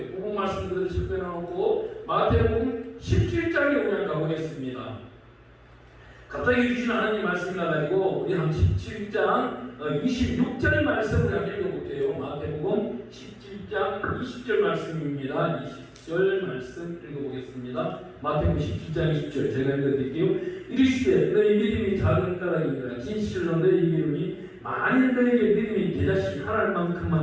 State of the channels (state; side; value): identical; both; correlation 1.00